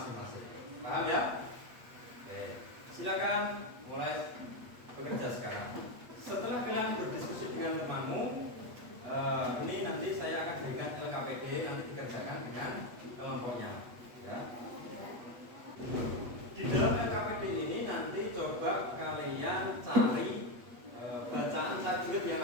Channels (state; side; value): late; left; 8.3 ms